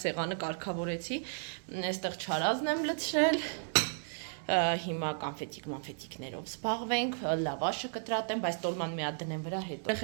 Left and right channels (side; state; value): left; silent; 55 dB below the other